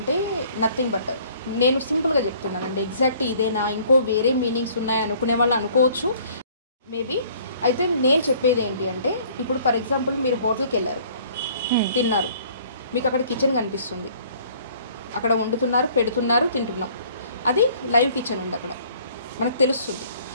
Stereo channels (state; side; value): inverted; both; correlation -0.56